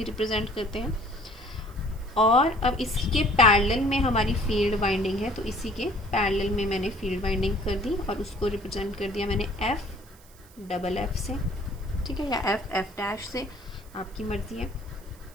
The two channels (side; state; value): right; noise; hiss, 26 dB below the sound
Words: रिप्रेजेंट करते हैं। और अब इसके पैरेलल में हमारी फील्ड वाइंडिंग है, तो इसी के पैरेलल में मैंने फील्ड वाइंडिंग कर दी और उसको रिप्रेजेंट कर दिया मैंने एफ, डबल एफ से, ठीक है, या एफ डैश से, आपकी मर्जी है।